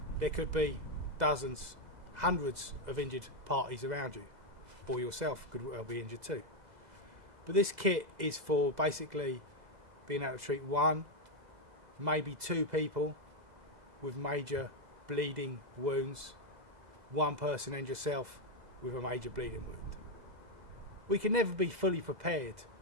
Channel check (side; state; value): left; late; 2.0 ms